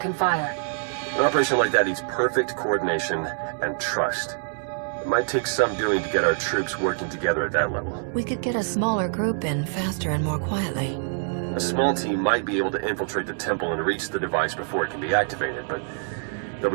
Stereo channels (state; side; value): silent; left; 61 dB below the other